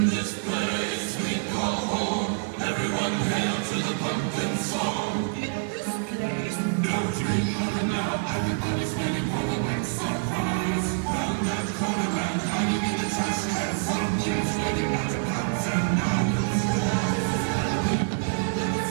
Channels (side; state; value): left; silent; digital silence